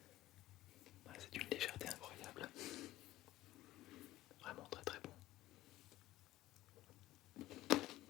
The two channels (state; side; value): quieter; right; 15.4 dB